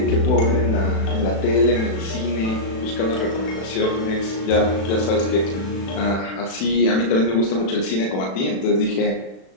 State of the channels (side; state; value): right; late; 36 ms